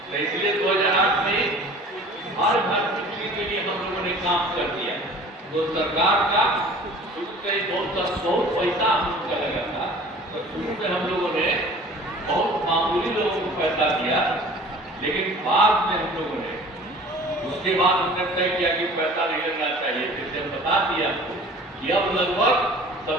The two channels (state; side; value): normal; both; correlation 0.46